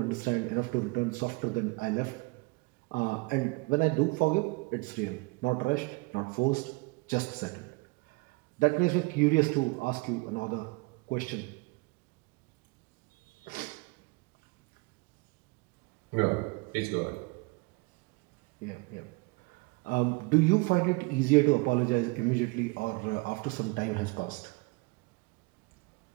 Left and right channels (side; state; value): left; quieter; 26.8 dB